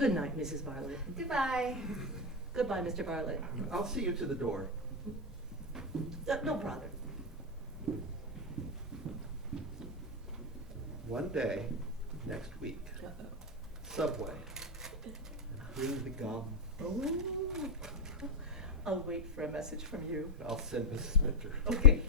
night, Mrs. Bartlett. Goodbye. Goodbye, Mr. Bartlett. I'll see you to the door. No bother. One day, next week, Subway. Bring the gum. Oh. I'll wait for a message from you. I'll send Mrs. Minter. Okay.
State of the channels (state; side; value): normal; both; correlation 0.05